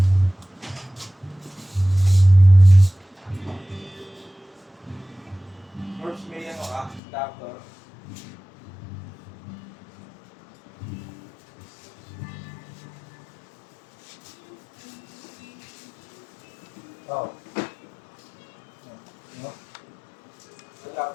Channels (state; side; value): drops out; right; at 7.0 s